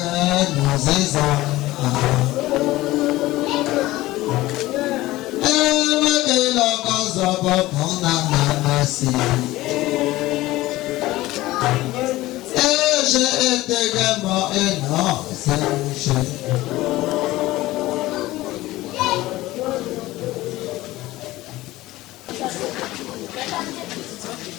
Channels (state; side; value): quieter; right; 17.7 dB